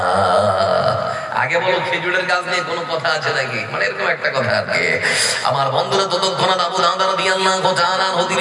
আগে বলো খেজুরের গাছ নিয়ে কোনো কথা আছে নাকি, মানে এরকম একটা কথা আর কি। আমার বন্ধুরা ততক্ষণ আবু দাহদা রাদিয়াল্লাহু তাআলা আনহু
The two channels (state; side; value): identical; both; correlation 1.00